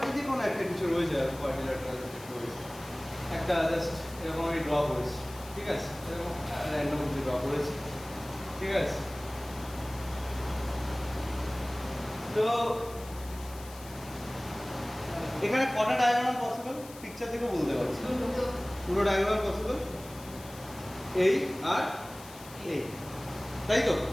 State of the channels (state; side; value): noise; left; hiss, 18 dB below the sound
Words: যে কোনো একটা কিছু রয়েছে কোয়াড্রিল্যাটারাল রয়েছে, একটা জাস্ট এরকম আমি ড্র করেছি, ঠিক আছে? এরকম র্যান্ডম ড্র করেছি, ঠিক আছে? তো এখানে কটা ডায়াগোনাল পসিবল পিকচার থেকে বলতে পারছি? পুরো ডায়াগোনাল পসিবল এই আর এই, তাই তো?